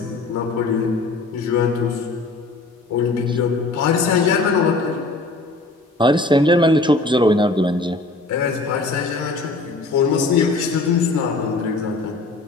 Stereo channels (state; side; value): quieter; right; 3.2 dB